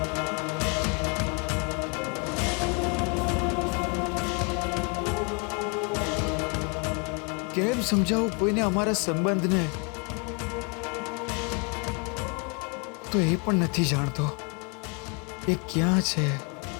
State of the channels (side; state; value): right; quieter; 34.4 dB